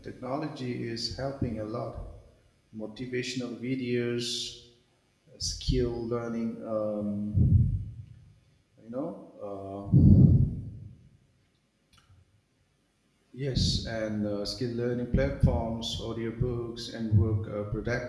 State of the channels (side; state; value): both; identical; correlation 1.00